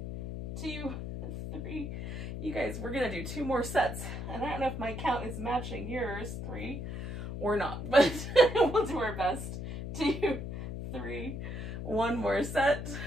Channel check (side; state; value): left; noise; hum, 6 dB below the sound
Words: 2, 3. You guys, we're gonna do 2 more sets, and I don't know if my count is matching yours, 3 or not, but we'll do our best. 2, 3, 1 more set,